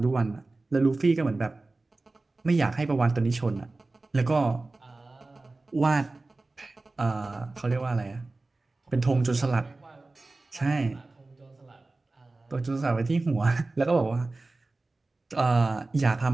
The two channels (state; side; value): quieter; left; 3.2 dB